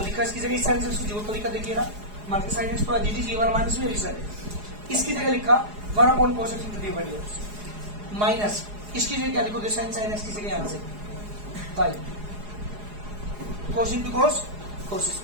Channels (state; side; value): late; left; 4.8 ms